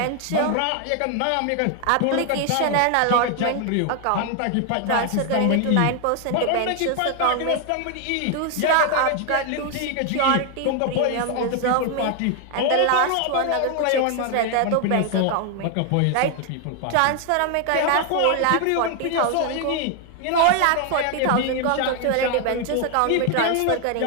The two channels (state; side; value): different; both; correlation 0.00